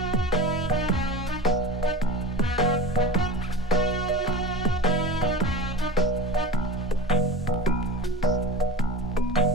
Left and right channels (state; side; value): normal; both; correlation 0.31